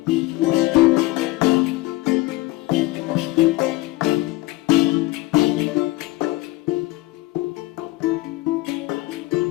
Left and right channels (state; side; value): quieter; right; 19.9 dB